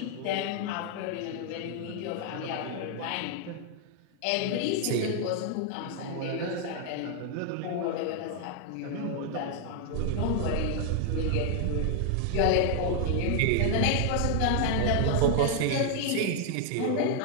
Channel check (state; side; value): different; both; correlation 0.00